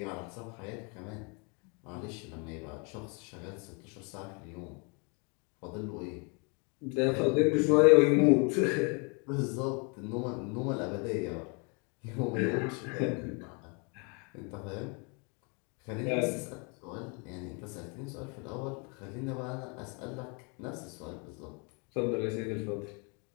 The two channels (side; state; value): right; quieter; 34.2 dB